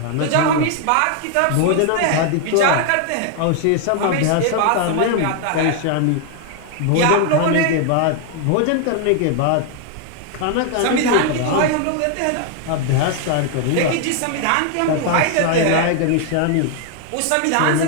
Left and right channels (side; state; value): both; different; correlation 0.00